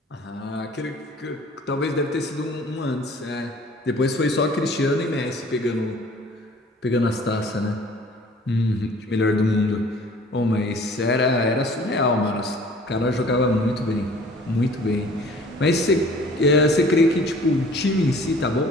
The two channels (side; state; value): both; normal; correlation 0.50